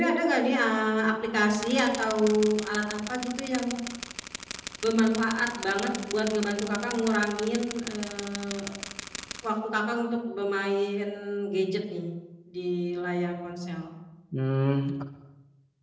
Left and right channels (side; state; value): both; identical; correlation 1.00